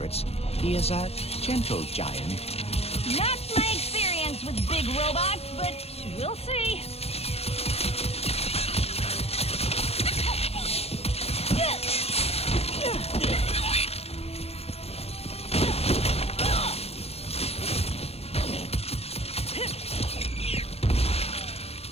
he is a gentle giant. Not my experience with big robots, but we'll see.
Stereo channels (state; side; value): late; right; 0.29 ms